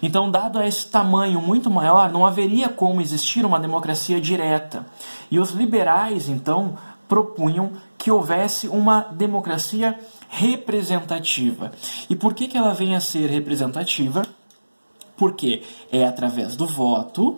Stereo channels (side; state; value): both; inverted; correlation -1.00